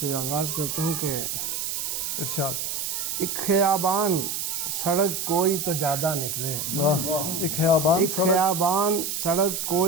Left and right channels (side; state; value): right; noise; hiss, 2 dB below the sound